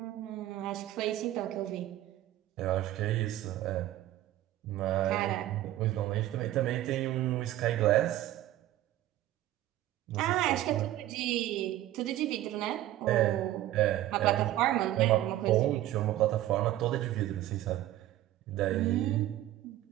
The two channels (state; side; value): quieter; left; 14.3 dB